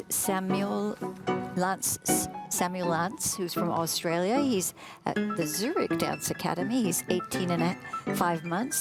Samuel Lantz, who's from Australia. He's at the Zurich Dance Academy. He's 18 and 5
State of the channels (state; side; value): identical; both; correlation 1.00